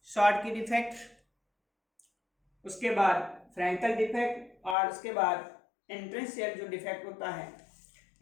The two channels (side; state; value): right; drops out; at 4.8 s